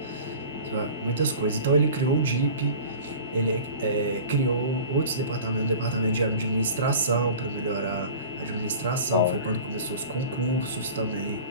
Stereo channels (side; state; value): both; inverted; correlation -0.39